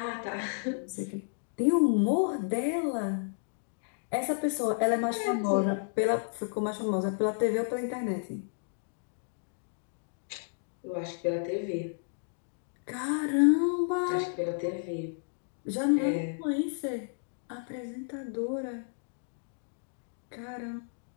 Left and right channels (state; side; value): silent; right; digital silence